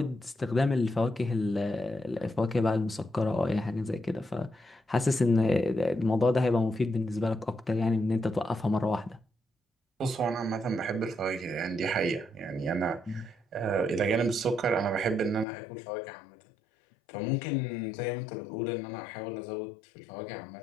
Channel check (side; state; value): right; drops out; at 15.5 s